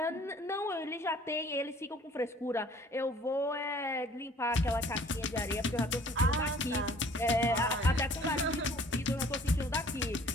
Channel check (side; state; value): both; normal; correlation 0.54